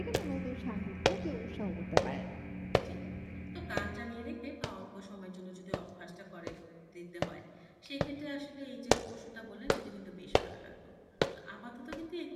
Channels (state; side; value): identical; both; correlation 1.00